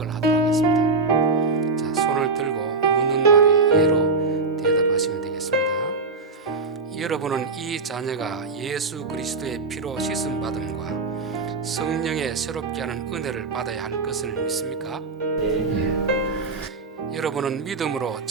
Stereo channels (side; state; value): left; quieter; 3.9 dB